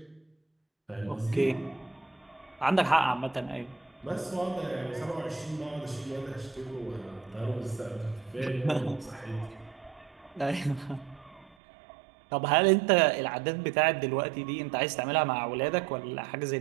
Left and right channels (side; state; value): left; drops out; at 11.6 s